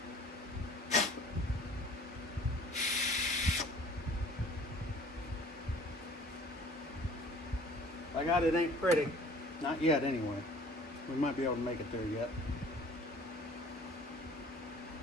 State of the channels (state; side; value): normal; both; correlation 0.50